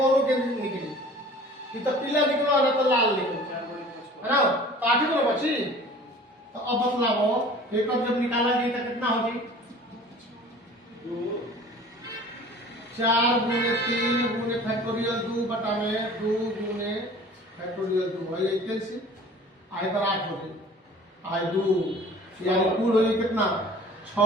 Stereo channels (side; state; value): both; normal; correlation 0.45